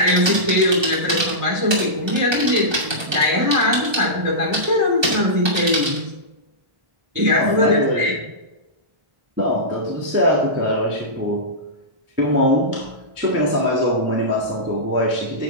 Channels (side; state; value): left; late; 1.2 ms